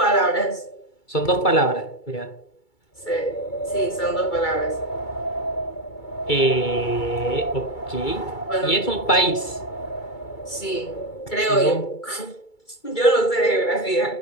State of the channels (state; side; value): late; right; 2.3 ms